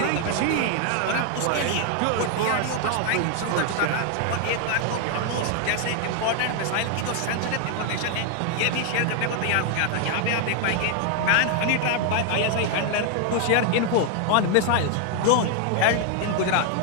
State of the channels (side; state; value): both; different; correlation 0.00